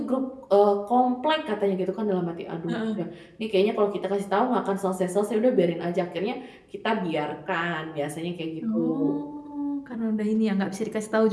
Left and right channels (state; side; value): identical; both; correlation 1.00